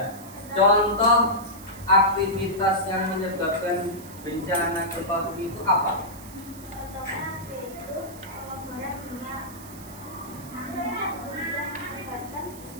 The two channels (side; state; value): right; noise; hiss, 17 dB below the sound